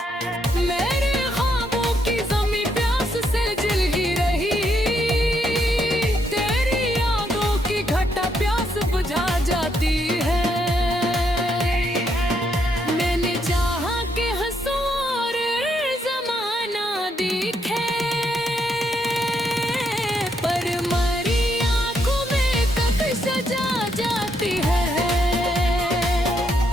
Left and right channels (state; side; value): normal; both; correlation 0.76